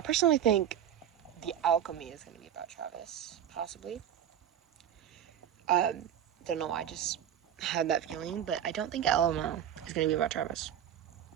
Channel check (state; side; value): quieter; left; 10.0 dB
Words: personally think The Alchemy is gonna be about Travis, possibly. Don't know why, I just had that feeling, but I don't think LOL is gonna be about Travis.